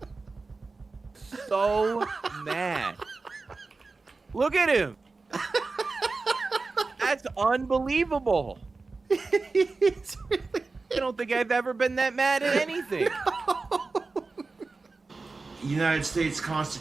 So mad. Look at him. That's unbelievable. He's really I don't think I've ever been that mad at anything. United States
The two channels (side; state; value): left; quieter; 3.9 dB